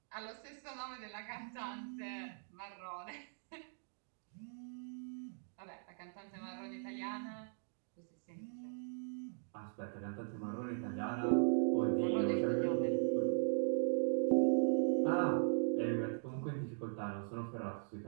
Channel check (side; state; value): left; silent; digital silence